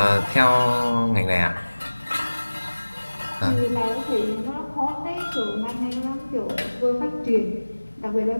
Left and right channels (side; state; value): both; inverted; correlation -1.00